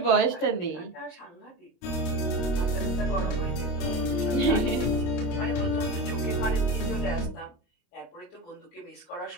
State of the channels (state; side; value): late; right; 22 ms